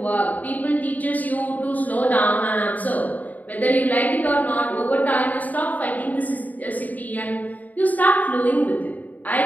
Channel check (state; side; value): late; right; 0.077 ms